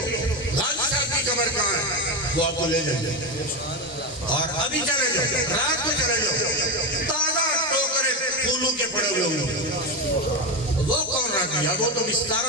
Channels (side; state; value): both; normal; correlation 0.15